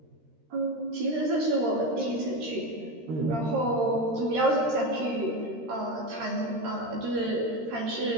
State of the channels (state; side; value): late; left; 13 ms